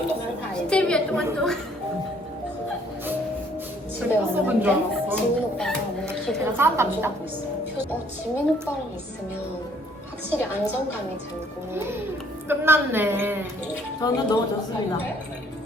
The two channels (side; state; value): both; normal; correlation 0.62